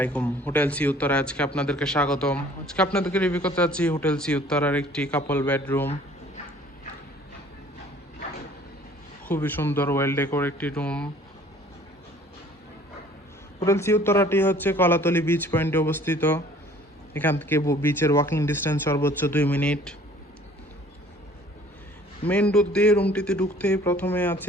Hotel sea Uttara আজকে আপনাদেরকে স্বাগতম। আজকে আপনাদেরকে রিভিউ করতে যাচ্ছি হোটেল সি উত্তরার একটি কাপল বেডরুম। খুবই সুন্দর ওয়েল ডেকোর একটি রুম। হোটেল সি উত্তরাটি হচ্ছে কলাতলি বিচ পয়েন্টে অবস্থিত। এখান থেকে বিচের ওয়াকিং ডিস্টেন্স সর্বোচ্চ 2 মিনিট। মেন ডোর দিয়ে রুমটিতে ঢুকতেই প্রথমে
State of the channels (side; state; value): both; normal; correlation 0.53